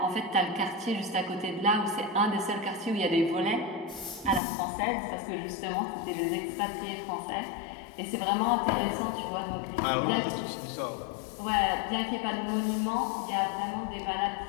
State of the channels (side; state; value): right; drops out; at 4.4 s